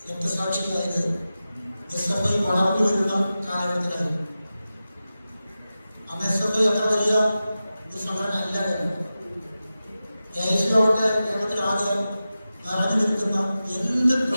രക്തസാക്ഷിയായത് SFI വളർന്നു വരുന്ന കാലഘട്ടത്തിലായിരുന്നു. അന്ന് SFI അത്ര വലിയ ഒരു സംഘടന അല്ല. AICയോടെ കേരളത്തിലാകെ നിറഞ്ഞു നിൽക്കുന്ന എന്ത്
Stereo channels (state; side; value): inverted; both; correlation -0.94